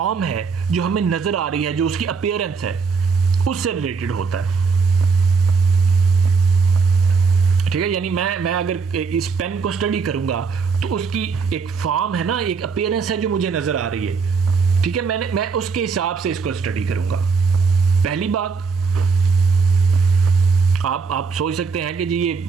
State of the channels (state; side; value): quieter; left; 5.0 dB